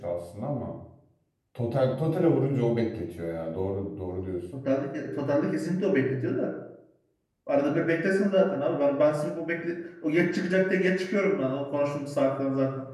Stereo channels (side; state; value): both; identical; correlation 1.00